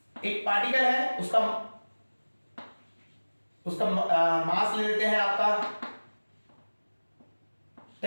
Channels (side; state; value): both; inverted; correlation -1.00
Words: एक पार्टिकल है, उसका मास ले लेते हैं आपका